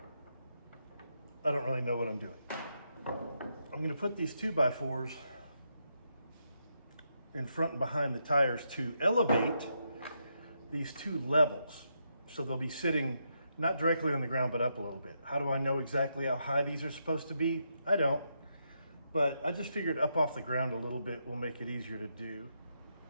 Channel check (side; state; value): both; inverted; correlation -0.81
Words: I don't really know what I'm doing. I'm gonna put these 2x4s in front and behind the tires to elevate these two levels. So they'll be sitting not directly on the ground, but up a little bit. How do I know exactly how high these are supposed to be? I don't, but I just figured up off the ground a little bit will make it easier to do.